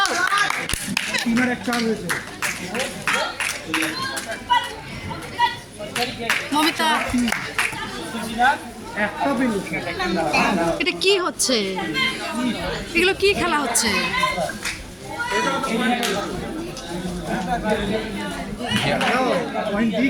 তিনের এক চার হয়েছে মমিতা একটা পেয়েছে এটা কি হচ্ছে? এগুলো কি খেলা হচ্ছে? পয়েন্ট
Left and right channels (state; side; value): identical; both; correlation 1.00